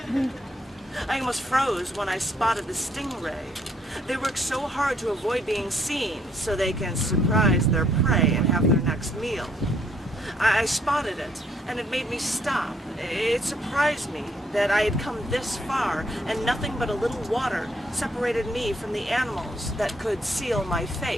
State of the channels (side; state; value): both; normal; correlation 0.69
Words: I almost froze when I spotted the stingray. They work so hard to avoid being seen so they can surprise their prey and have their next meal. I spotted it, and it made me stop. It surprised me that I had come this far, and nothing but a little water separated me from the animals that could seal my